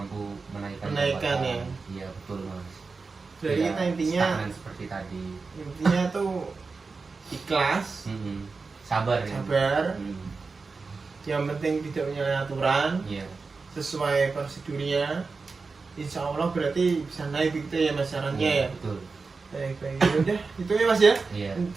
menaikkan ya. Iya betul Mas. Jadi ya, intinya seperti tadi intinya tuh ikhlas, sabar. Yang penting tidak menyalahi aturan, sesuai prosedurnya. Insya Allah berarti bisa naik gitu ya Mas sarannya ya. Betul. Baik. Udah itu ya Mas ya. Iya.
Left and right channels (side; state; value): left; quieter; 4.3 dB